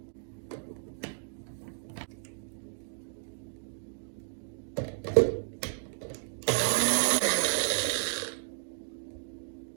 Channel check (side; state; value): left; silent; digital silence